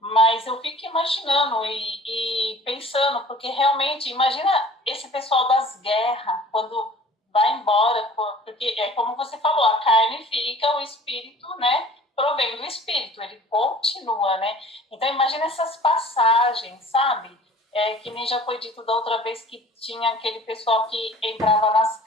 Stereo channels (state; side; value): normal; both; correlation 0.48